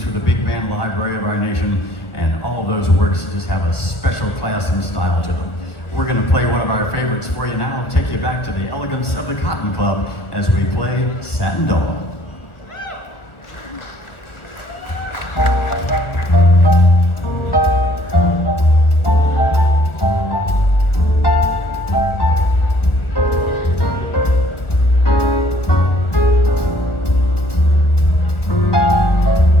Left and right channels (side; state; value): right; late; 1.2 ms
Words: for the big band library of our nation, and all of those works just have a special class and style to them. We're going to play one of our favorites for you now, take you back to the elegance of the Cotton Club as we play Satin Dawn.